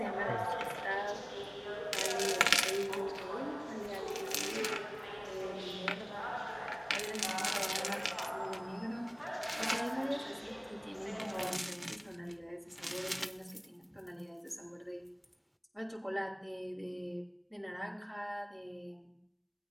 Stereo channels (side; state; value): both; identical; correlation 1.00